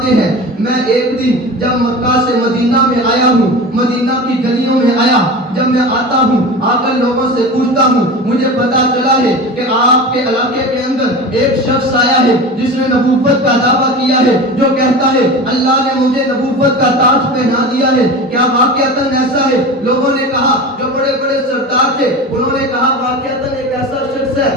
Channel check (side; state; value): both; normal; correlation 0.31